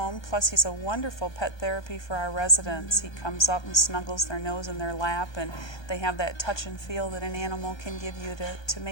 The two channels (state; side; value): late; right; 1.2 ms